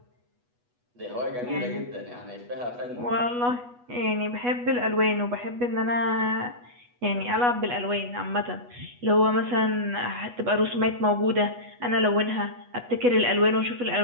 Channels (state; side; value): late; left; 8.2 ms